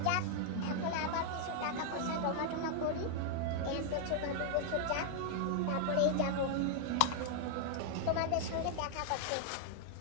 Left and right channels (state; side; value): different; both; correlation 0.00